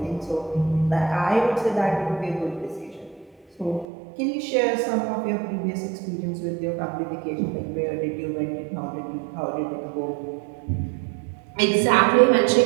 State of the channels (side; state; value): left; drops out; at 3.9 s